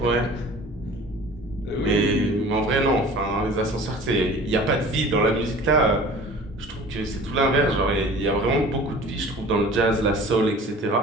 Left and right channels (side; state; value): both; normal; correlation 0.44